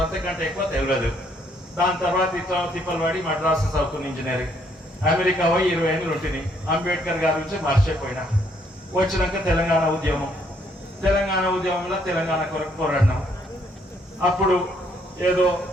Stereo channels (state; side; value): normal; both; correlation 0.69